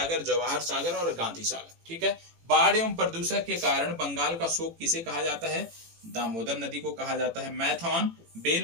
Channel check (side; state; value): left; late; 18 ms